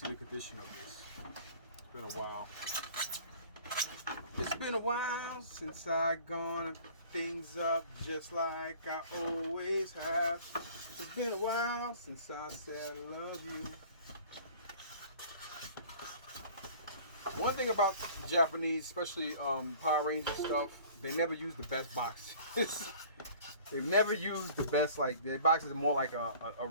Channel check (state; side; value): inverted; both; correlation -0.48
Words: the condition of this. It's been a while. It's been a while since I gone things up just like I always have. It's been a while since I said I love you. One thing about Japanese, especially Power Ranger stuff, they never use the best boxes. They've never used the best, like their boxes are more like a